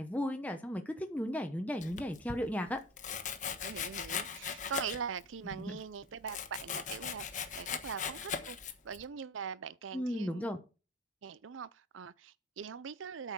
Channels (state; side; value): normal; both; correlation 0.38